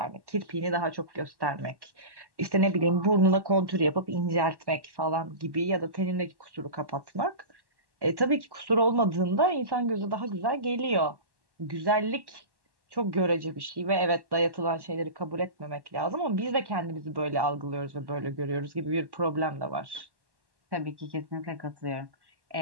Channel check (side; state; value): left; late; 1.1 ms